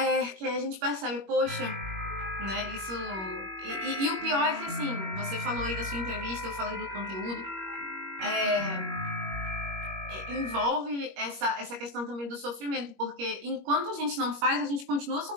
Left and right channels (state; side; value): late; left; 21 ms